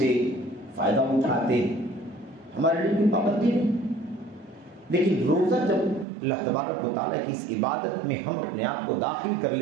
فائدہ اٹھاتے ہیں، ہمارے لیے کوئی پابندی نہیں۔ لیکن روزہ جب اللہ تبارک و تعالیٰ کی اس عبادت میں ہم اپنے آپ کو داخل کر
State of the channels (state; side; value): drops out; left; at 6.1 s